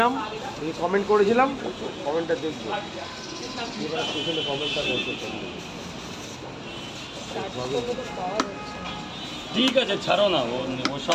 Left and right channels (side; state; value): both; identical; correlation 1.00